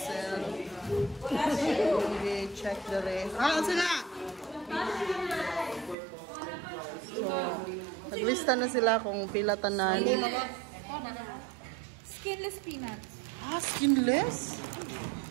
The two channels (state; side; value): drops out; left; at 6.0 s